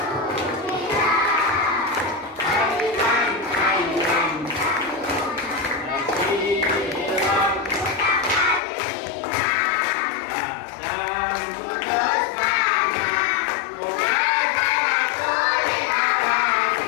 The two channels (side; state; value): right; drops out; at 8.6 s